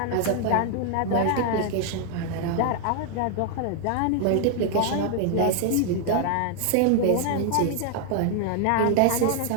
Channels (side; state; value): both; different; correlation 0.00